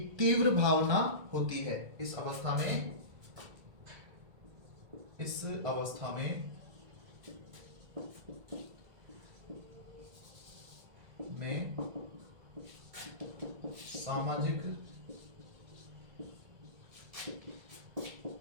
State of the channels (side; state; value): left; late; 1.8 ms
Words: तीव्र भावना होती है। इस अवस्था में सामाजिक